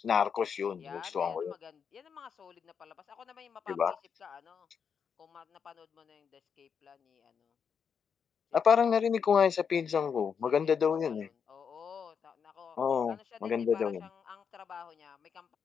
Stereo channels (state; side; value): quieter; right; 6.7 dB